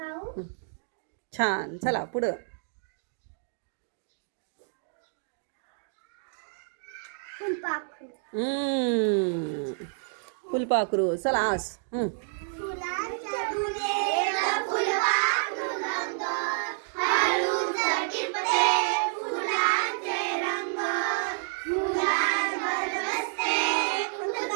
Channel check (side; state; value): left; silent; digital silence